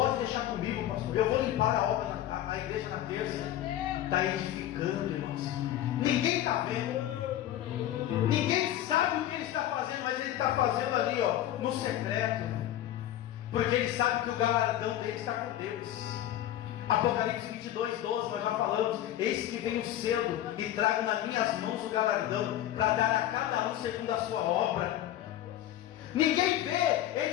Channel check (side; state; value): right; quieter; 12.6 dB